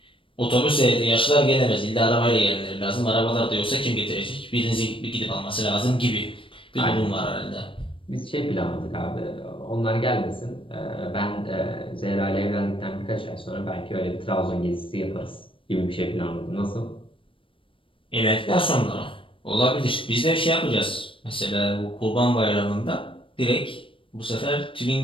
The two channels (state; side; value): late; right; 0.25 ms